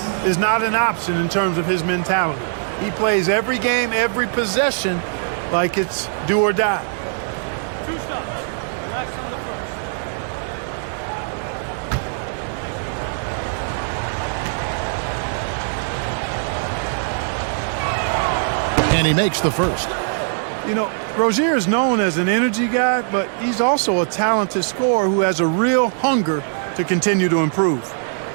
is not an option in terms of his mentality. He plays every game, every possession like it's do or die. 2 stops. Relax on the first. And he makes the first. You know, Rozier is known as an energy guy, but he's also a talented scorer who has a real hunger to continue to improve.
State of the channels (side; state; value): left; silent; digital silence